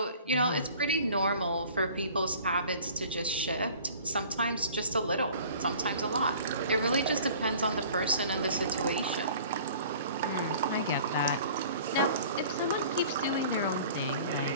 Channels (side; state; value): both; inverted; correlation -0.48